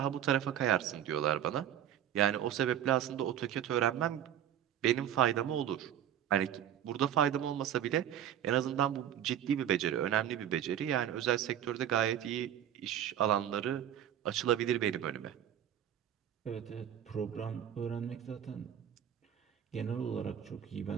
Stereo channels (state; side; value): quieter; left; 10.2 dB